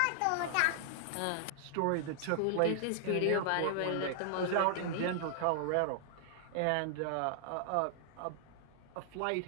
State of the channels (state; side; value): different; both; correlation -0.01